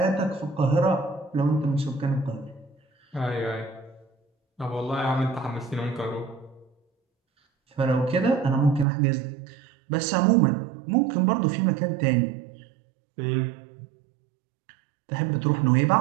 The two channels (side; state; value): left; drops out; at 8.8 s